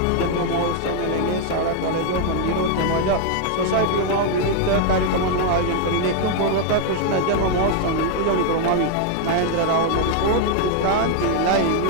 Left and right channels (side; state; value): both; different; correlation 0.00